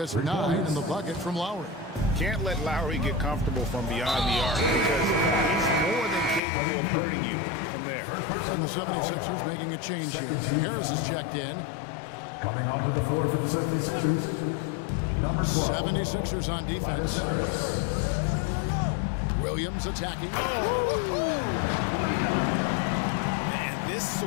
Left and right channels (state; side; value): drops out; right; at 6.4 s